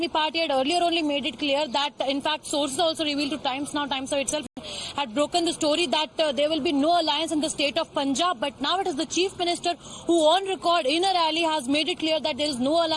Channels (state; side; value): identical; both; correlation 1.00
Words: Party had earlier only made it clear that, in fact, sources also revealed to Times Now, Times Now itself had broken the story that there will be no alliance in the state of Punjab. But now it is the Chief Minister who on record in a rally has made it clear that there is no